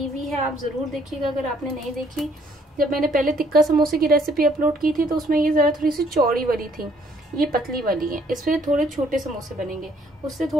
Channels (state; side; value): normal; both; correlation 0.64